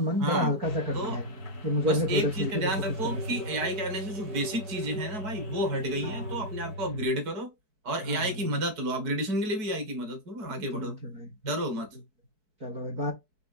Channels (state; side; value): late; left; 4.6 ms